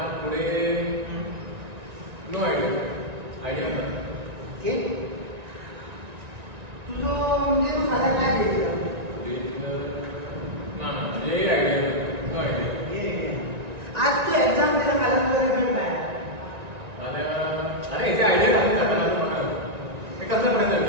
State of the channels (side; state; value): left; late; 1.9 ms